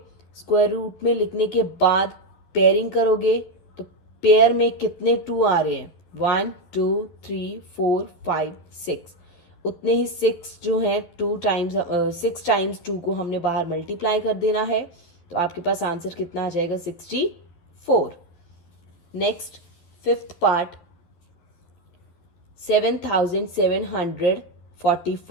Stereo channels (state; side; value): late; right; 12 ms